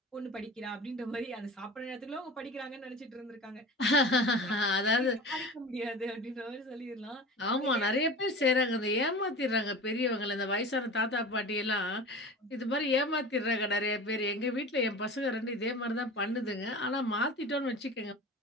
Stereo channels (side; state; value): both; normal; correlation 0.35